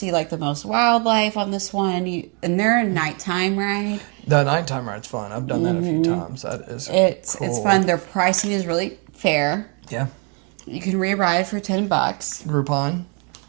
like the most wildlife on this one. And they're a nighttime ride. The nighttime ride's fun. I've done that a few times. That is cool. It's fun. Their pricing is really fair. Yeah. You can re-ride for $10. Groupon.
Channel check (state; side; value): quieter; left; 35.5 dB